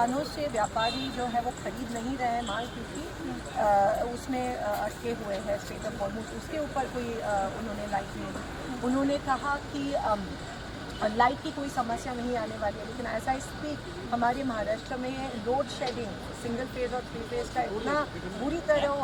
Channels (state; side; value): identical; both; correlation 1.00